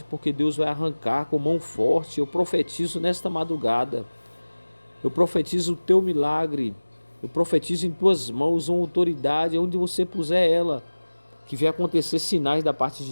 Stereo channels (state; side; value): inverted; both; correlation -1.00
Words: porque Deus vai arrancar com mão forte. Eu profetizo nesta madrugada. Eu profetizo o teu milagre. Eu profetizo em tuas mãos uma autoridade, onde você puser ela, que vai acontecer sinais da parte